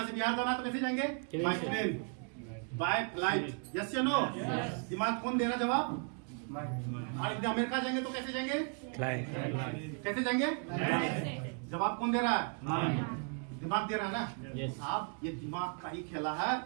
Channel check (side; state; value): left; quieter; 39.8 dB